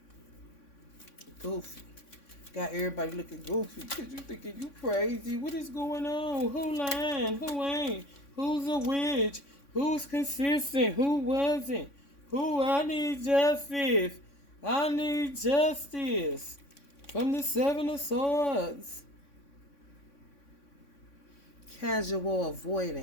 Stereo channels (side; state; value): right; late; 3.6 ms